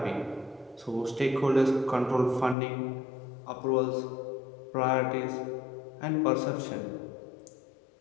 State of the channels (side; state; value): right; drops out; at 2.6 s